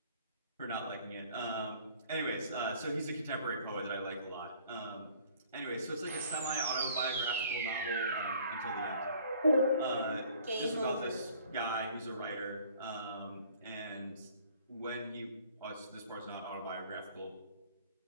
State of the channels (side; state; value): both; inverted; correlation -0.54